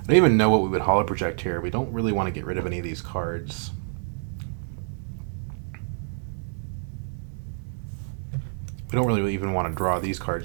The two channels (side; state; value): left; silent; digital silence